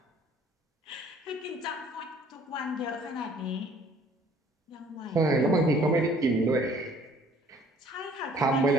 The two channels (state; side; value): normal; both; correlation 0.56